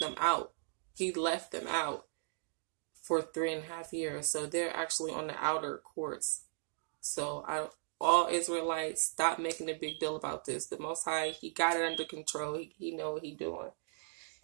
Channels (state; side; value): silent; left; digital silence